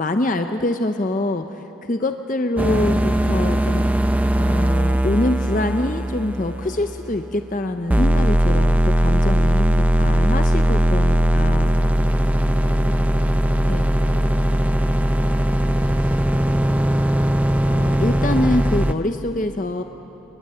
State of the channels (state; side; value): normal; both; correlation 0.91